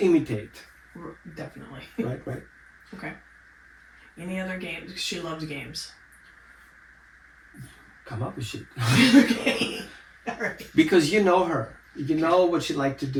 imitate. Definitely. Right. Okay. Any other games? She loves games. Come up with shit. Okay. All right. Because you know her. You know what she like to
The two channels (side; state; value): both; identical; correlation 1.00